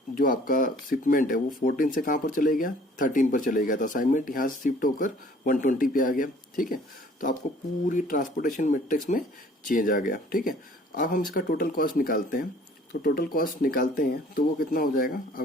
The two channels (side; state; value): both; normal; correlation 0.54